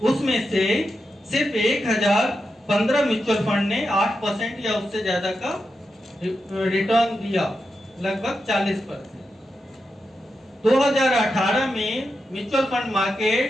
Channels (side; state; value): both; normal; correlation 0.88